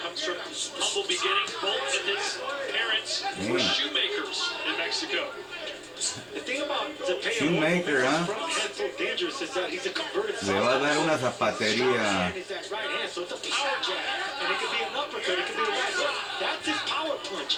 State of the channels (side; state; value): both; identical; correlation 1.00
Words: from humble beginnings. Both of his parents were shoemakers in Mexico. The thing about Zepeda, Shoemaker, huh? front hand so dangerous is that he's a converted Le va a dar una Short zapatería. hand is that right hand, so it's a power jab, and it could be an uppercut, it could be a right hook. That's his power punch.